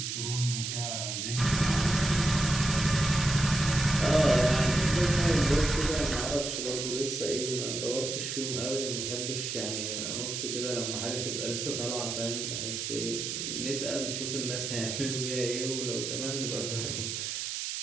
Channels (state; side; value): noise; right; hiss, 3 dB below the sound